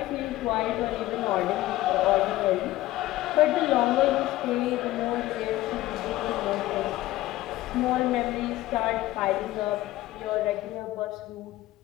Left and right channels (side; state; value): right; quieter; 16.4 dB